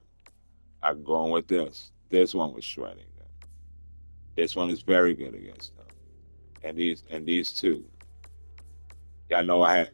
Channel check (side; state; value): both; inverted; correlation -1.00